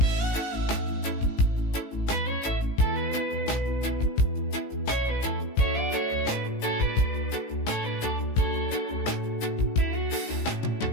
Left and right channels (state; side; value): late; right; 17 ms